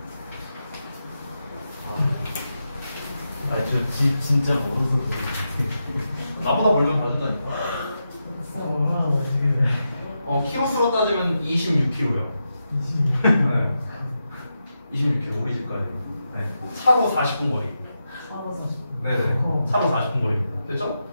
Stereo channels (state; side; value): inverted; both; correlation -0.88